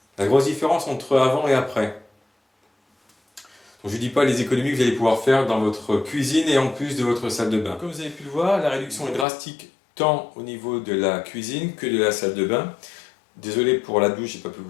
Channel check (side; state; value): right; drops out; at 9.2 s